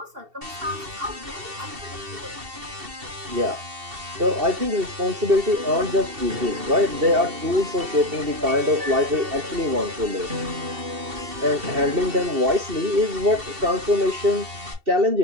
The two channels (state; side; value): late; left; 2.7 ms